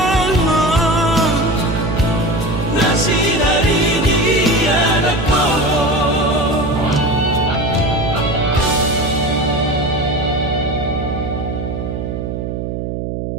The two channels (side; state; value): right; noise; hum, 4 dB below the sound